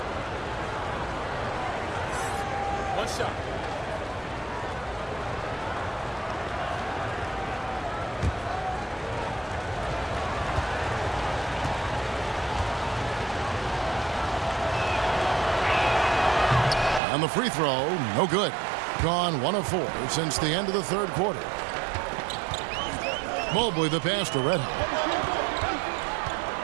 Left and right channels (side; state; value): left; drops out; at 17.0 s